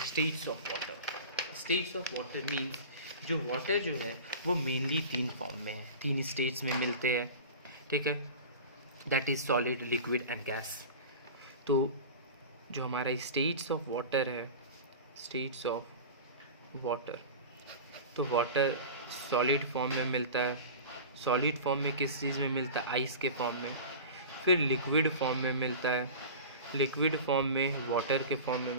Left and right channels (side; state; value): both; inverted; correlation -0.33